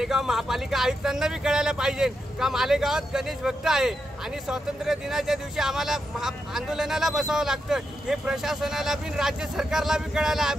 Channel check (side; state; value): both; normal; correlation 0.85